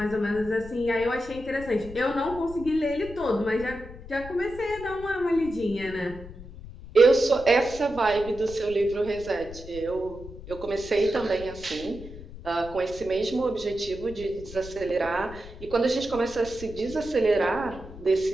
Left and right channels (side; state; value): left; noise; rumble, 15 dB below the sound